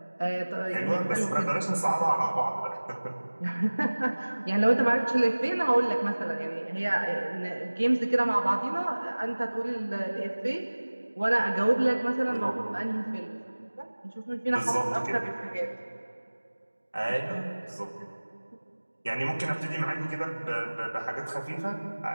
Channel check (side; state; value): both; inverted; correlation -1.00